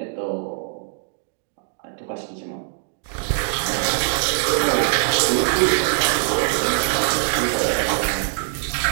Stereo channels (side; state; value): left; silent; digital silence